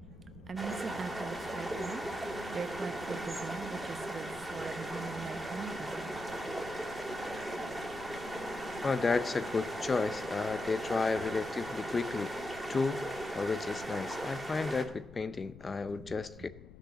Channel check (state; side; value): noise; left; rumble, 18 dB below the sound